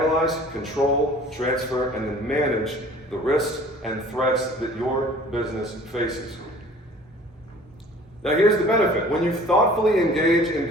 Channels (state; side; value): normal; both; correlation 0.49